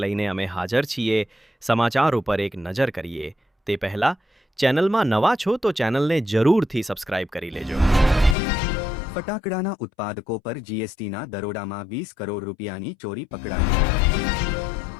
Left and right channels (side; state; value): right; drops out; at 8.3 s